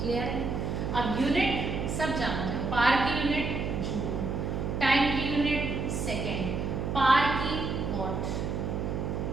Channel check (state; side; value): noise; right; hum, 2 dB below the sound